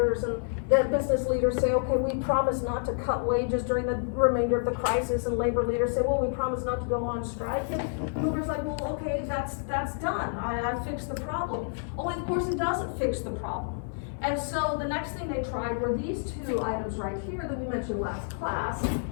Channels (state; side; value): silent; right; 59 dB below the other